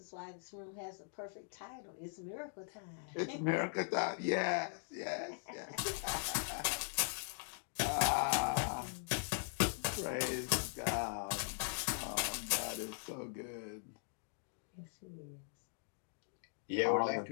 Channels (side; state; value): right; silent; digital silence